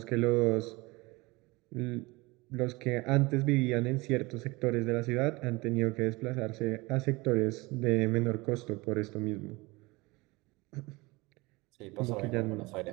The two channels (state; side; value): quieter; left; 23.5 dB